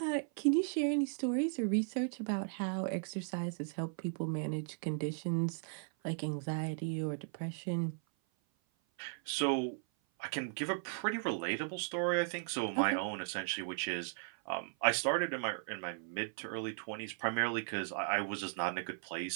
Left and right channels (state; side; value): silent; left; 53 dB below the other